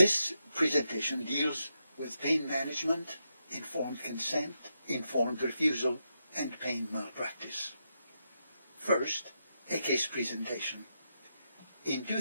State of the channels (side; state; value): both; inverted; correlation -0.84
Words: presentation deals with pain management, informed consent, informed refusal, and pain malpractice. First, a case presentation. In